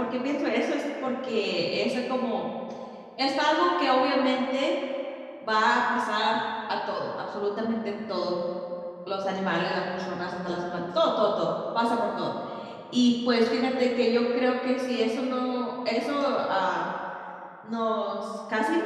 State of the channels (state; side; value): identical; both; correlation 1.00